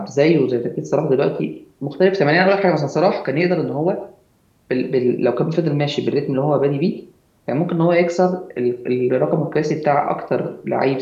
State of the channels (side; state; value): both; identical; correlation 1.00